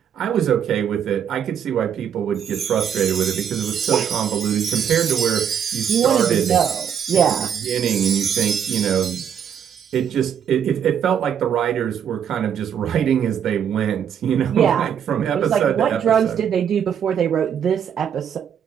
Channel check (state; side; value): quieter; left; 8.4 dB